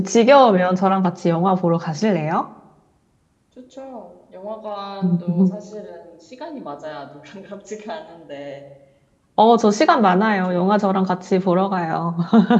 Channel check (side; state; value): both; identical; correlation 1.00